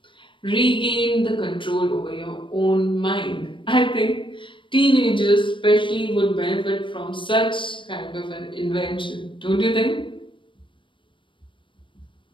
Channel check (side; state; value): right; late; 0.24 ms